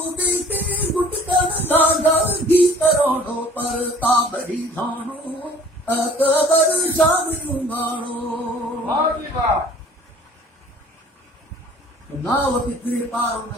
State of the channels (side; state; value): both; normal; correlation 0.51